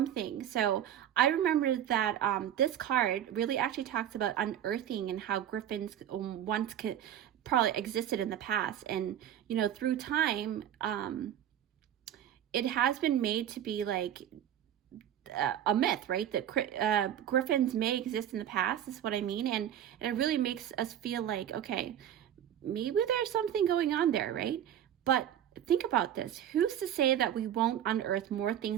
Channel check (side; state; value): left; quieter; 10.5 dB